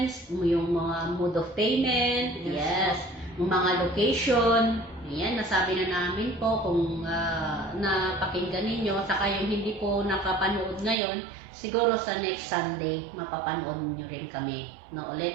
yung mga mode of payment, yes, yung mga location. Ayan, nasabi na namin po kung napakinggan ninyo. Saka yung hindi po nakapanood ngayon, siguro sa next Sunday, mapapanood nyo rin kami na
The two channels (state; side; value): drops out; left; at 11.0 s